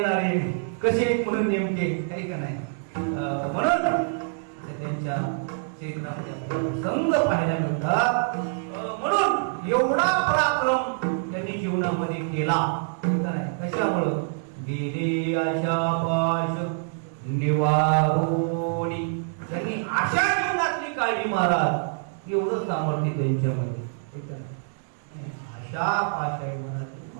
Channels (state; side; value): silent; left; digital silence